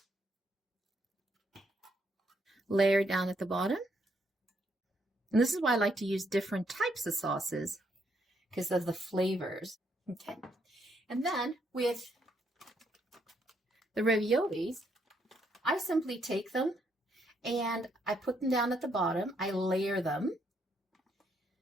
layer down at the bottom. And this is why I like to use different types of sauces, because of the flavors. Okay. And then with the raviolis, I simply take them and I put them down at the bottom. I layer them.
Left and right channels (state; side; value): normal; both; correlation 0.74